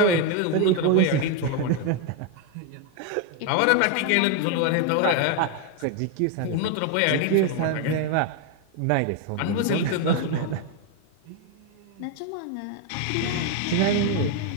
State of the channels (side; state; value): both; different; correlation 0.01